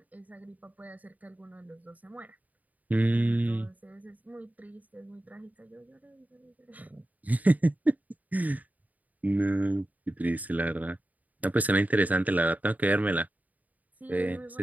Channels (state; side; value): late; left; 0.076 ms